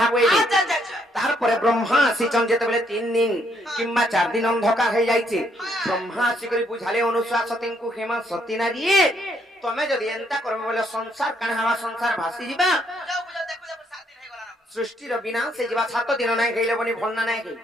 বইলি আচ্ছা আচ্ছা আচ্ছা তারপরে ব্রহ্মা আসিছন যেতেবেলে 3 দিন কিংবা 4 দিন অন্ধকার হয়ে যাইছে ব্রহ্মা আসি করে বুঝালে অনুশাসতিଙ୍କୁ হেমা সতী নারী তুমি যদি এন্তা করবে বলে সংসার কানে হওয়া সংসার ভাসি যাবা যাও বুঝাও দেখো দেখো 7 দিন হয়ে গলা না সৃষ্টির বিনাশ হয়ে যাবা 7 দিন নাই খাইলে বনি ভল না নাই খাই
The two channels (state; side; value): normal; both; correlation 0.71